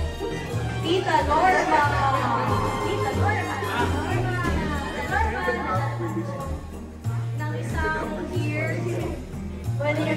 Tita Norma. Tita Norma. Nang isang here. Pwede niyo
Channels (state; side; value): identical; both; correlation 1.00